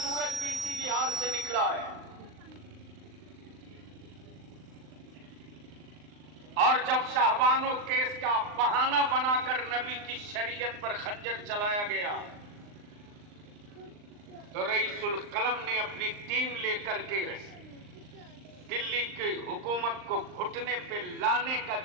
भी इसी बिहार से निकला है। और जब शाहबानो केस का बहाना बनाकर नबी की शरीयत पर खंजर चलाया गया तो रईसुल कलम ने अपनी टीम लेकर के दिल्ली की हुकूमत को घुटने पे लाने का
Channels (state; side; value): late; left; 39 ms